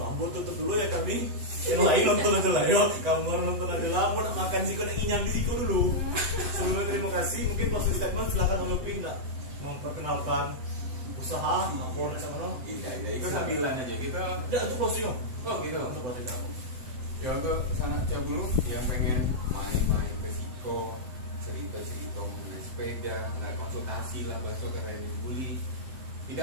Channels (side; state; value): left; late; 7.9 ms